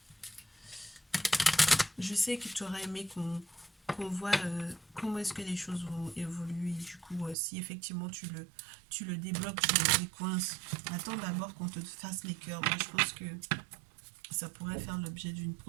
Je sais que tu aurais aimé qu'on voit comment est-ce que les choses vont évoluer. Du coup, si effectivement tu le débloques, tu le décoinces, attends d'abord qu'on te fasse les cœurs. Moi, je pense que ça pourrait faire l'objet d'une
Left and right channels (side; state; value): left; drops out; at 7.4 s